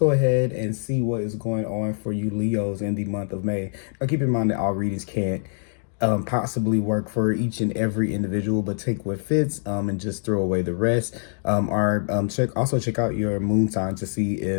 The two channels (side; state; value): right; silent; digital silence